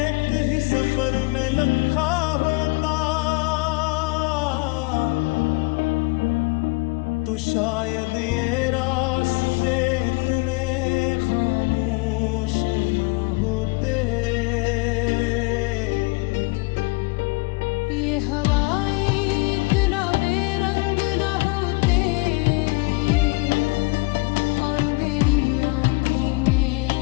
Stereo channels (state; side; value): quieter; right; 26.3 dB